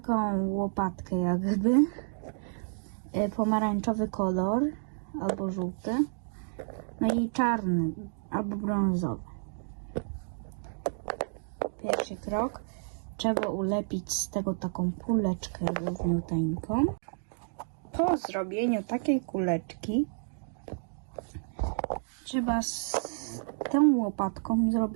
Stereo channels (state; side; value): silent; left; digital silence